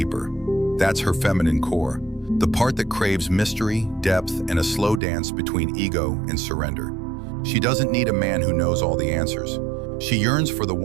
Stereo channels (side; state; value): left; drops out; at 5.0 s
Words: That's her feminine core, the part that craves mystery, depth, and a slow dance between ego and surrender. She doesn't need a man who knows all the answers. She yearns for the